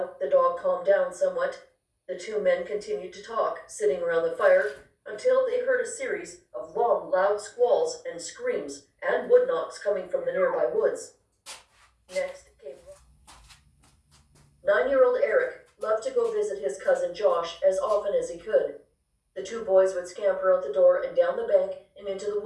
the dog calmed down somewhat. The 2 men continued to talk, sitting around the fire, until they heard a series of long, loud squalls and screams and wood knocks coming from the nearby woods. Next came 9-year-old Eric loved to go visit his cousin Josh as often as he could. The 2 boys would scamper out the door and down the bank and into the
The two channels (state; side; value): identical; both; correlation 1.00